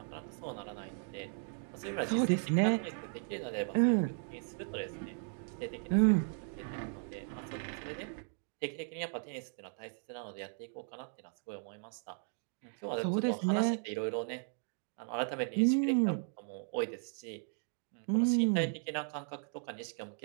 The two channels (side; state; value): left; silent; 54 dB below the other